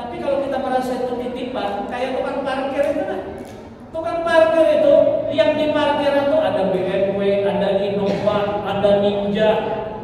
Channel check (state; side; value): identical; both; correlation 1.00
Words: kalau kita merasa itu titipan, kayak tukang parkir itu kan. Tukang parkir itu yang